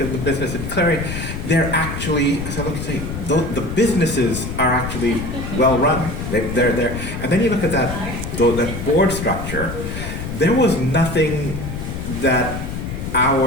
at the business of Clearing, they're actually, so look and say, the businesses are actually well run. They're there. And then you look at that board structure, there was nothing that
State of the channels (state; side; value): noise; left; rumble, 6 dB below the sound